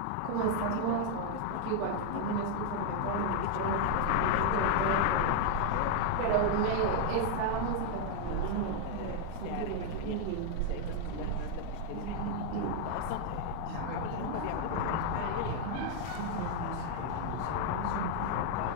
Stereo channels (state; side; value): different; both; correlation 0.00